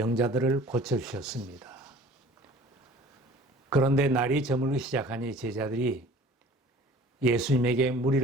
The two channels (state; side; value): normal; both; correlation 0.48